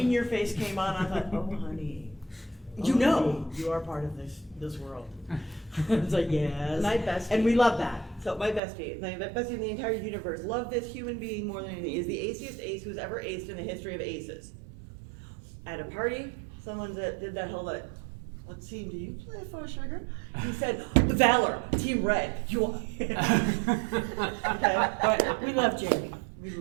your face came on. I thought, oh honey, You know. honey, you are part of this world. It's like yes, My bestie. and we love that. So my bestie in the entire universe, love this human being more than anything, is the aciest ace who's ever aced in the history of aces. At a party, someone that did that whole what team do you play for, sugar? He said, Valor, Team Red. You are. Okay. But we love Jamie. We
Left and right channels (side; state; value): left; drops out; at 8.6 s